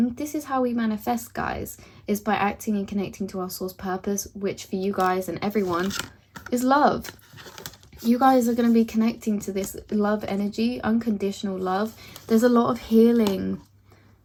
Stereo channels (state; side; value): identical; both; correlation 1.00